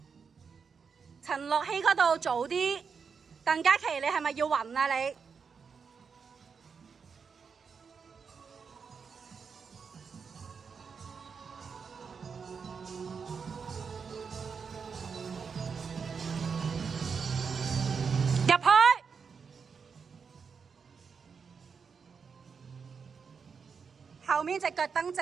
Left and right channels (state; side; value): quieter; left; 5.9 dB